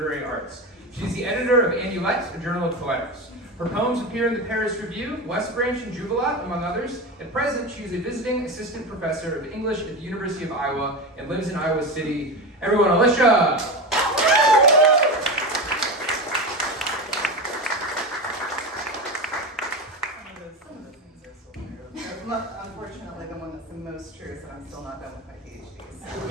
Arts. She is the editor of Amulet, a journal of poetics. Her poems appear in the Paris Review, West Branch, and Jubilat, among others. At present, she is a visiting assistant professor of English at the University of Iowa and lives in Iowa City. Everyone, Alicia! Some of those things are still true. Unfortunately, the one that's the most true is that I'm still not done with my PhD.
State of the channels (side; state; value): both; normal; correlation 0.22